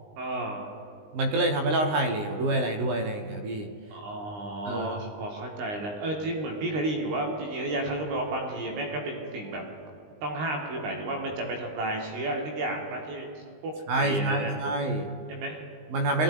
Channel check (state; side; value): late; left; 19 ms